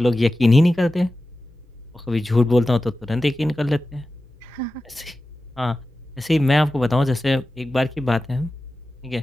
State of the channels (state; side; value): normal; both; correlation 0.94